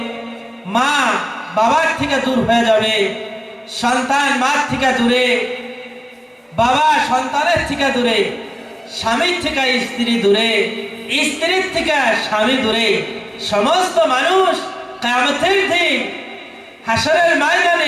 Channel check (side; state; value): both; identical; correlation 1.00